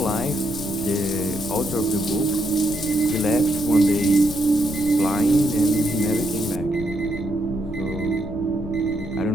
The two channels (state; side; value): noise; left; rumble, 10 dB below the sound